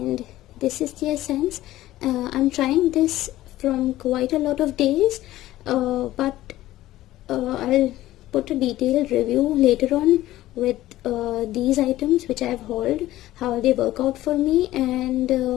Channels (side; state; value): right; quieter; 15.4 dB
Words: this is the essence. I'm trying this from quite a lot of days, but I'll put a detailed review later on with these items which I've hauled, how they work out for me.